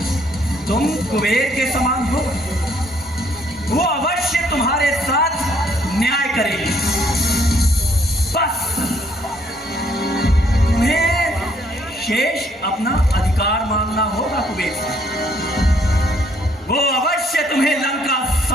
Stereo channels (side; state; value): both; normal; correlation 0.67